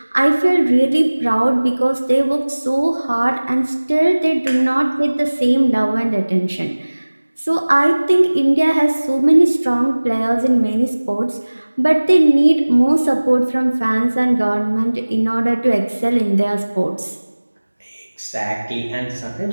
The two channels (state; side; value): inverted; both; correlation -1.00